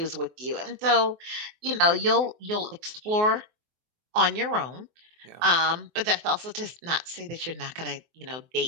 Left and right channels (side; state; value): left; late; 24 ms